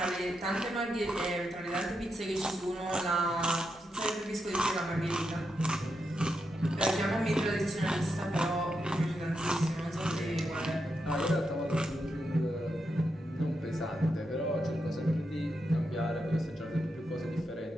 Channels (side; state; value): both; normal; correlation 0.84